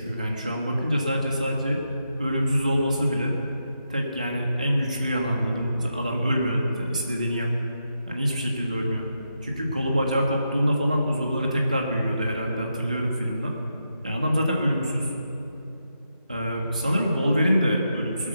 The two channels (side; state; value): both; inverted; correlation -0.84